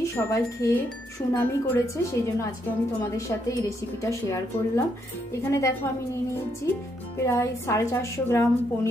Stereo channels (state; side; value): normal; both; correlation 0.75